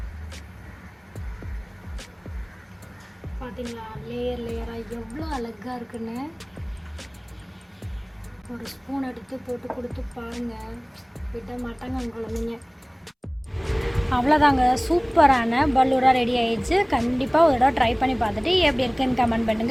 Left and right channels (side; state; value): both; identical; correlation 1.00